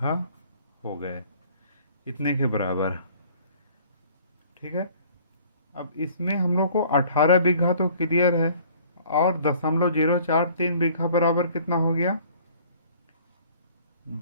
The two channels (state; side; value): inverted; both; correlation -0.54